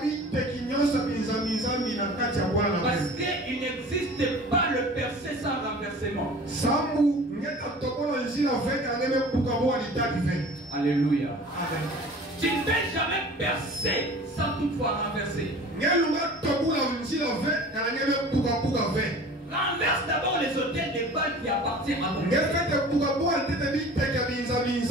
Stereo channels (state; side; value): normal; both; correlation 0.42